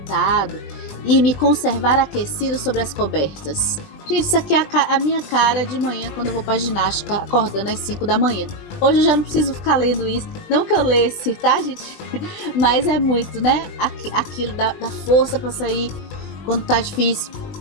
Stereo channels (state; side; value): late; right; 20 ms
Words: e me conservar aquecido sobre as cobertas? Gente, isso aqui é a minha cara de manhã quando eu vou pra ginástica, acordando às 5 da manhã. Hoje eu já não preciso ficar lendo isso. Não que eu lesse, tá, gente? Mas é muito, né? Aquilo da força pra sair quando tá difícil.